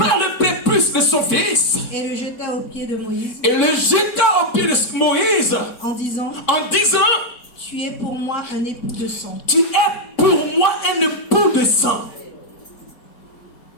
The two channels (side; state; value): right; late; 4.1 ms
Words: le prépuce de son fils et le jeta aux pieds de Moïse et le jeta au pied de Moïse en disant, en disant, tu es pour moi un époux de sang. tu es pour moi un époux de sang.